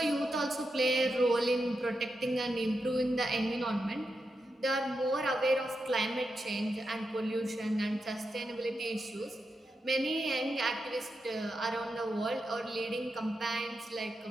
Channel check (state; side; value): normal; both; correlation 0.87